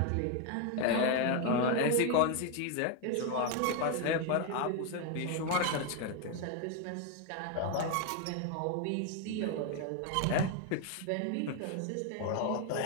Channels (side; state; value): both; different; correlation 0.01